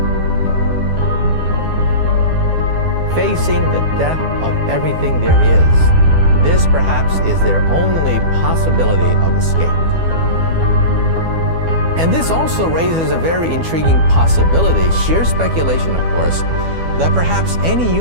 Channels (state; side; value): late; left; 12 ms